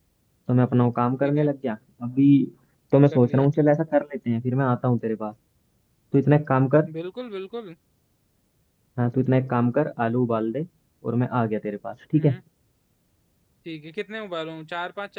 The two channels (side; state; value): both; identical; correlation 1.00